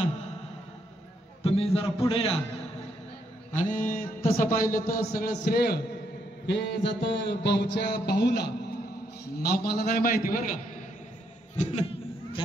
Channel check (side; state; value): both; normal; correlation 0.75